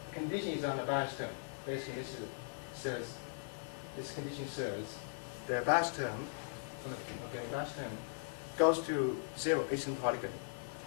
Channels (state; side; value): silent; right; digital silence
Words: condition is on the bias term. Basically, this condition says the bias term, bias term goes to 0 asymptotically.